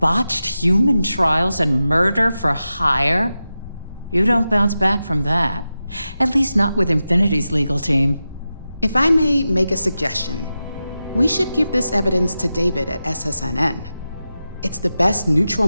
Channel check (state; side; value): inverted; both; correlation -0.92